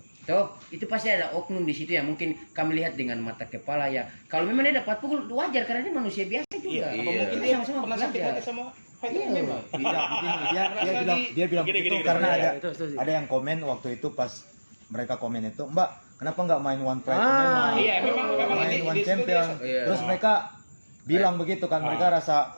Toh, itu pasti ada oknum di situ yang mungkin kami lihat dengan mata kepala ya. Kalau memang dia dapat pukul wajar karena dia manusia biasa juga. Iya. Apa mungkin Kita dia sama-sama pernah sakit belajar. hati sama fighter Iya. MMA? Tidak, begini, dia bilang Gini, begitu gini, karena gini. ada Itu setuju. ada yang komen waktu itu pas mereka komen itu, Mbak, kenapa nggak main One Pride Ah, MMA? Iya, memang main di One situ Champion. dia- Iya. Terus mereka bilang begitu kan, mereka rasa,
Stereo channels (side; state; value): both; inverted; correlation -1.00